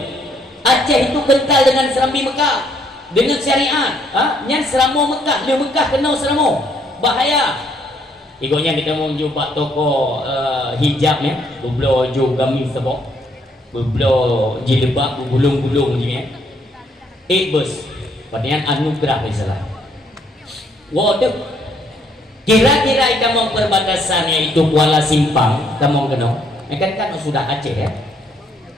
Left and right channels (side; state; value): both; normal; correlation 0.69